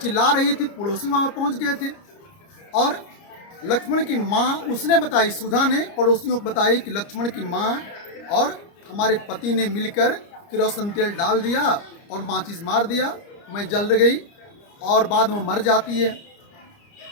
रही थी, पड़ोसी वहाँ पहुँच गए थे और लक्ष्मण की माँ उसने बताई, सुधा ने पड़ोसियों को बताई कि लक्ष्मण की माँ और हमारे पति ने मिलकर केरोसिन तेल डाल दिया और माचिस मार दिया, मैं जल गई और बाद में मर जाती है।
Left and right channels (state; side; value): late; right; 29 ms